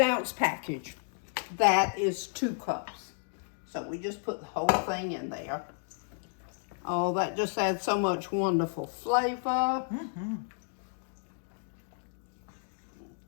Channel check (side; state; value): right; silent; digital silence